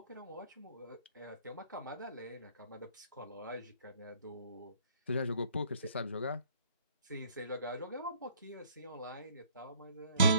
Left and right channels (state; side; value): inverted; both; correlation -0.59